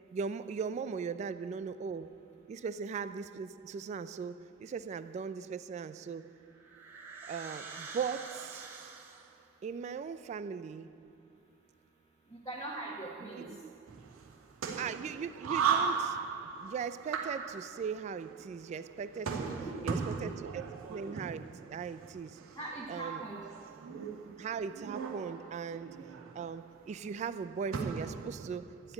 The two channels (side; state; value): left; quieter; 5.6 dB